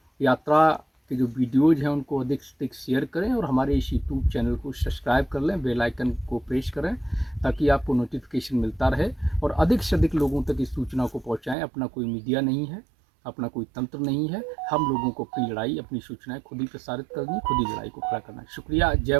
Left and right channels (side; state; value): left; drops out; at 11.6 s